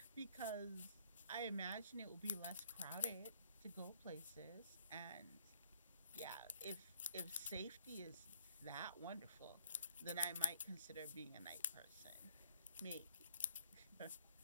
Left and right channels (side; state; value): both; inverted; correlation -0.62